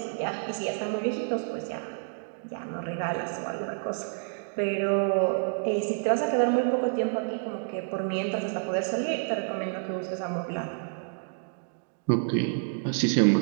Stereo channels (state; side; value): silent; left; digital silence